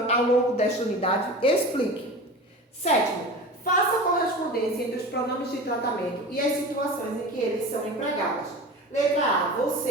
ao longo desta unidade? Explique. Sétimo, faça a correspondência entre os pronomes de tratamento e as situações em que eles são empregados. Letra A,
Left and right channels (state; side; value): normal; both; correlation 0.33